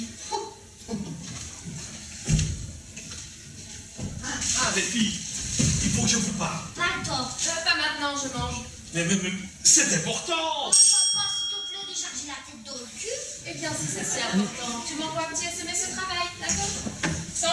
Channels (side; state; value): both; identical; correlation 1.00